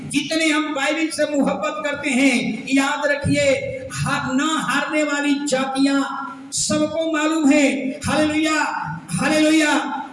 जितने हम बाइबल से मोहब्बत करते हैं, याद रखिए ना हारने वाली जातियां सबको मालूम है। Hallelujah hallelujah.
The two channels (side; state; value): both; identical; correlation 1.00